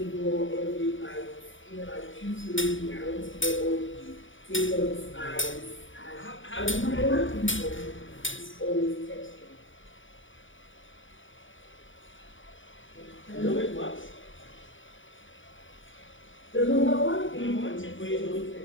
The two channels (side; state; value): right; late; 0.56 ms